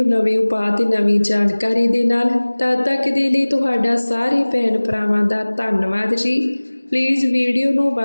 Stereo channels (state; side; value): inverted; both; correlation -1.00